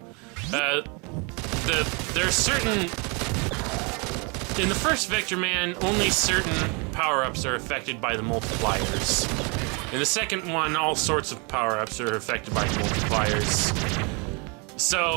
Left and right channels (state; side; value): quieter; left; 31.9 dB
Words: there's certain... In the first Vectorman, only certain power-ups are affected by the multipliers. In the second one, all sorts of power-ups are affected by multipliers.